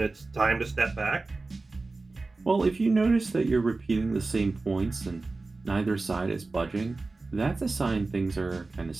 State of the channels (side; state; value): left; quieter; 3.5 dB